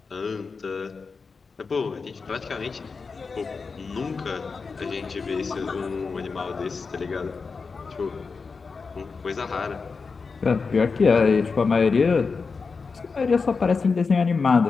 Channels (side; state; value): right; quieter; 4.8 dB